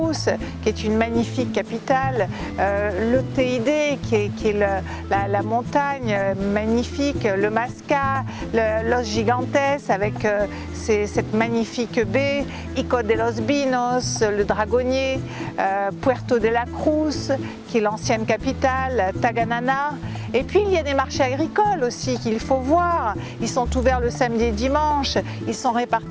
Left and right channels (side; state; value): both; identical; correlation 1.00